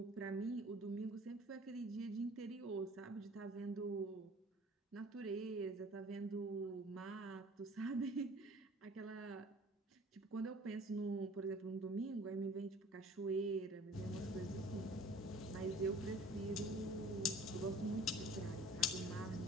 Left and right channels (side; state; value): both; normal; correlation 0.49